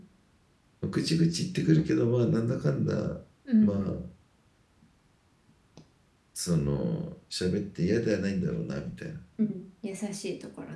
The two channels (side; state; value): both; identical; correlation 1.00